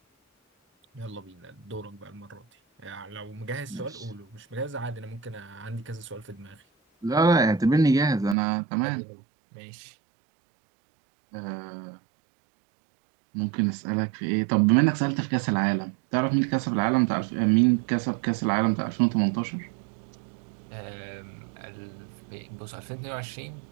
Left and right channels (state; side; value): drops out; left; at 8.3 s